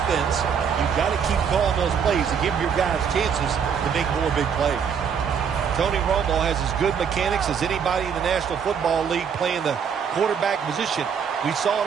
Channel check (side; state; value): left; quieter; 7.1 dB